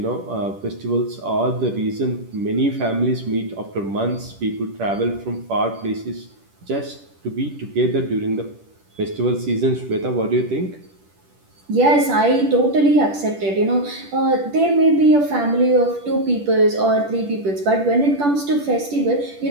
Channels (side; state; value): left; late; 10 ms